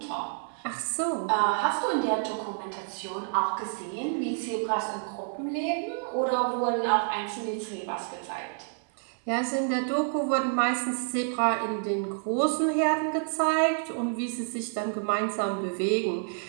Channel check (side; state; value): left; silent; 59 dB below the other